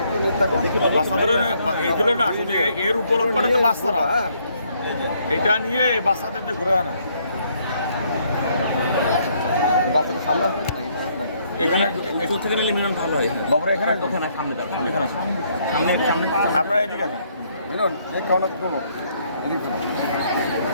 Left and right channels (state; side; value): inverted; both; correlation -0.69